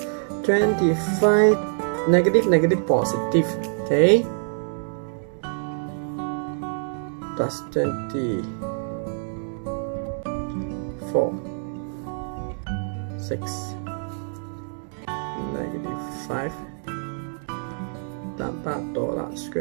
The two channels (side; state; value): left; silent; 61 dB below the other